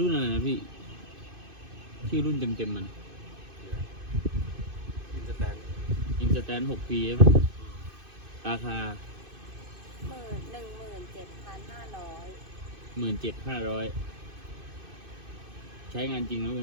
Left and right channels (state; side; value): late; left; 2.5 ms